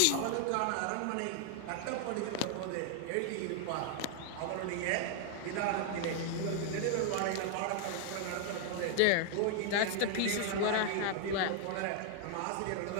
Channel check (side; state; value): both; different; correlation 0.00